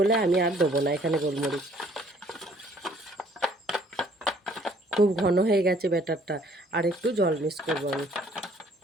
আমি আর দেবো না এখানে গোলমরিচ। খুব ঘন হয়ে গেছে ব্যাটারটা, আর একটু জল মিক্স করবো আমি।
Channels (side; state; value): both; normal; correlation 0.60